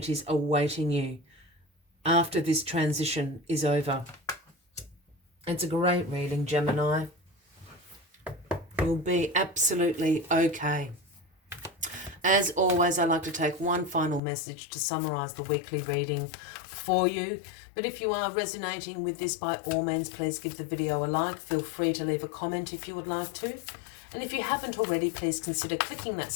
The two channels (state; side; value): drops out; right; at 14.2 s